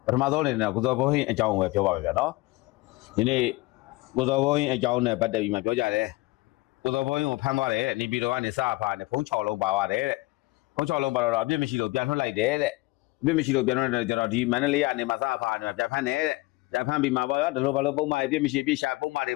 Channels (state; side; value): quieter; right; 21.8 dB